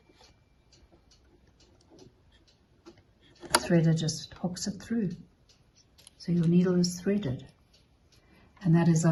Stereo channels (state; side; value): identical; both; correlation 1.00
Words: the threader just hooks it through. So your needle is threaded. And that is